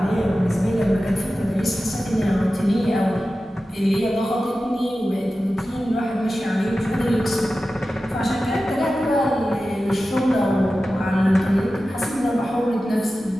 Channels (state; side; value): normal; both; correlation 0.94